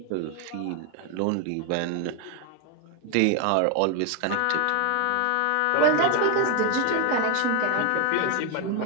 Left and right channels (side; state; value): both; different; correlation 0.01